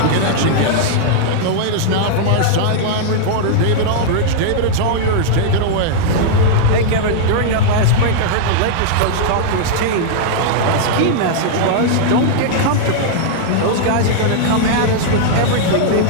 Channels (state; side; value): different; both; correlation -0.01